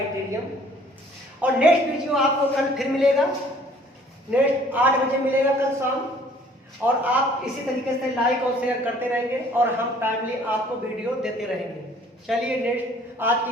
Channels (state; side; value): normal; both; correlation 0.56